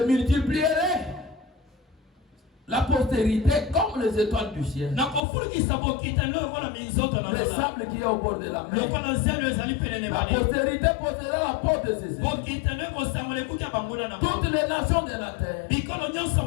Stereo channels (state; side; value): drops out; right; at 5.2 s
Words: multiplierai. La postérité comme les étoiles du ciel. Le sable qui est au bord de la mer. La postérité possédera la porte de ses ennemis. Toutes les nations de la terre